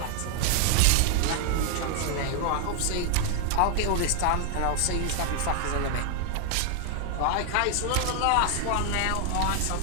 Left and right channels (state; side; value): different; both; correlation 0.00